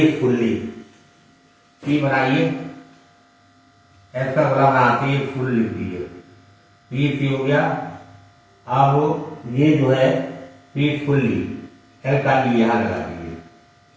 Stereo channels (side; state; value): both; identical; correlation 1.00